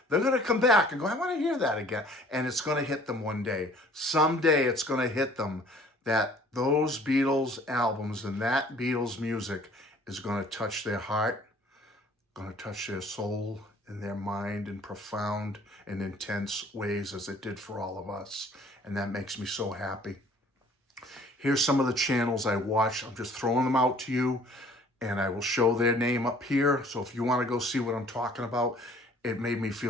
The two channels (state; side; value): normal; both; correlation 0.54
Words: They're going to come back and go, I want to hear that again. And it's going to hit them one day. Someday it's going to hit them that those Beatles albums and that Beatles music is going to touch their heart, going to touch their soul and their mind in profound and intense ways as it did for all of us. And that makes me so happy. Here's some of the channels I watch. I'm just throwing them out to you, and I will show their name up here. So if you want to go see what I'm talking about, it made me